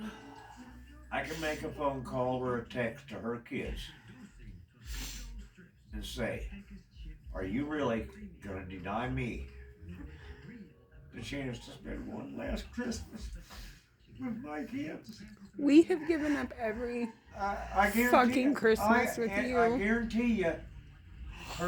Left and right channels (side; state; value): both; identical; correlation 1.00